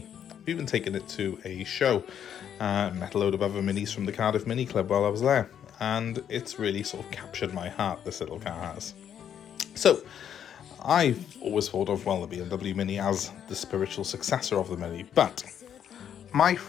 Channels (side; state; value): right; quieter; 9.1 dB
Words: I've even taken it to a show, met a load of other Minis from the Cardiff Mini Club while I was there, and it's really sort of captured my heart, this little car has. So, I've always thought of, well, the BMW Mini as the spiritual successor of the Mini, but my